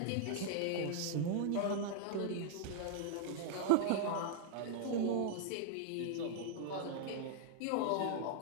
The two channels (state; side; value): different; both; correlation 0.00